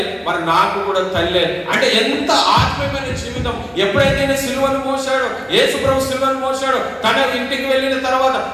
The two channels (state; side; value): identical; both; correlation 1.00